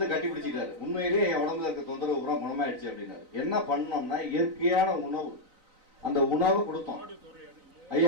கட்டி பிடிச்சிட்டாரு. உண்மையிலேயே என் உடம்புல இருக்க தொந்தரவு பூரா குணமாயிடுச்சு அப்படின்னாரு. என்ன பண்ணோம்னா இயற்கையான உணவு, அந்த உணவு கொடுத்தோம்.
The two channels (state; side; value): late; left; 3.9 ms